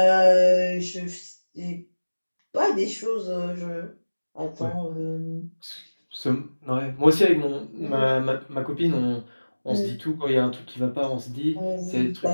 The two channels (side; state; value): both; inverted; correlation -1.00